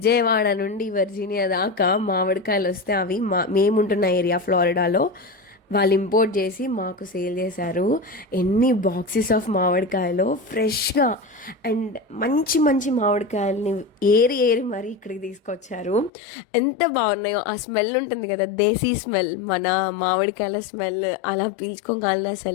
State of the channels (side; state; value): right; drops out; at 16.1 s